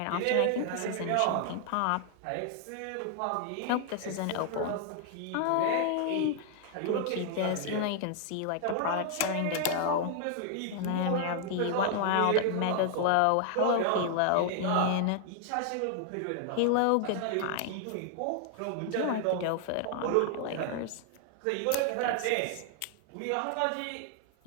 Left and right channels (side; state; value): both; different; correlation 0.00